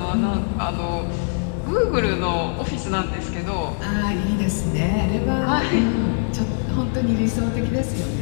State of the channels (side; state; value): right; silent; digital silence